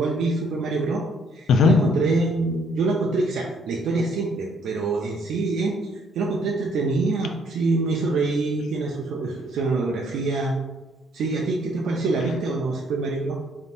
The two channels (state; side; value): normal; both; correlation 0.65